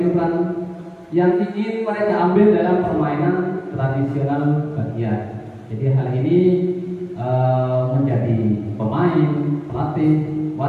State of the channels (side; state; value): both; identical; correlation 1.00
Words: peran yang ingin mereka ambil dalam permainan tradisional bagian. Jadi hal ini menjadi pemain, pelatih,